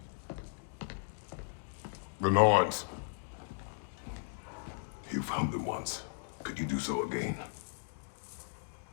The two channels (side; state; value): right; silent; digital silence